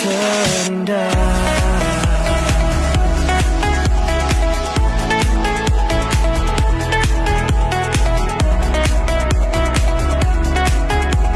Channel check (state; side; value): identical; both; correlation 1.00